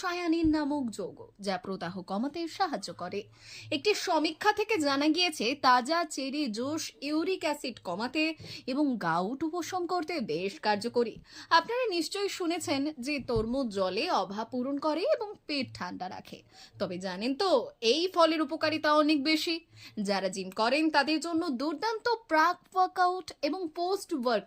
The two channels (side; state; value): both; identical; correlation 1.00